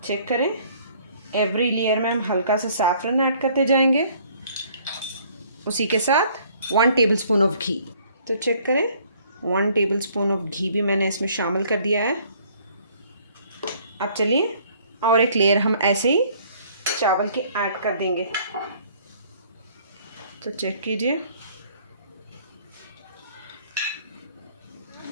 चेक करें, एवरी लेयर में हम हल्का सा सैफरन ऐड करते जाएंगे, उसी के साथ 1 टेबलस्पून ऑफ घी। तो चेक करें, 1 टेबलस्पून ऑफ घी भी मैंने इसमें शामिल कर दिया है। अब चलिए और एक लेयर हम ऐसे ही चावल की ऐड कर देंगे। तो चेक कीजिए,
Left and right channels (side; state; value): both; inverted; correlation -0.59